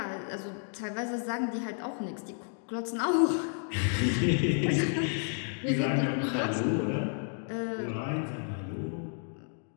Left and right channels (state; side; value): silent; right; 57 dB below the other